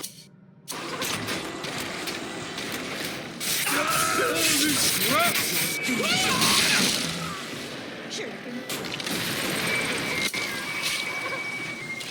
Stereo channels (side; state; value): both; identical; correlation 1.00